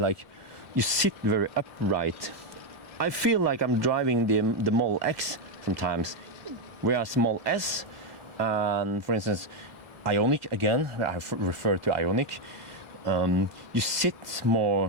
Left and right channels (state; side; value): late; left; 1.3 ms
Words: you sit very upright. I feel like I'm driving the Model X sometimes, whereas Model S, and for instance Ioniq, again I refer to Ioniq, you sit